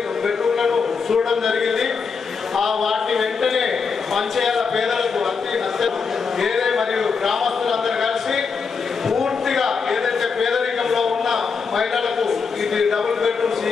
బెడ్రూమ్లను చూడడం జరిగింది. ఆ వాటిని వెంటనే పంచేయాల పేదలకు ఏదే మరియు గ్రామస్తులందరూ కలిసి పూర్తిగా ఏదైతే పేదరికంలో ఉన్న మహిళలకు ఇది డబుల్ బెడ్రూమ్స్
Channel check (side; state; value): right; quieter; 5.4 dB